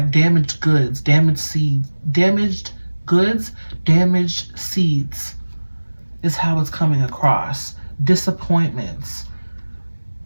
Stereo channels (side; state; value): both; inverted; correlation -1.00